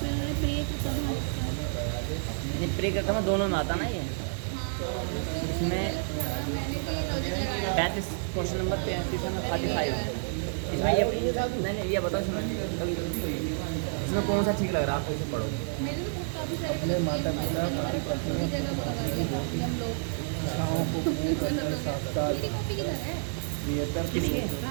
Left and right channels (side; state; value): left; silent; digital silence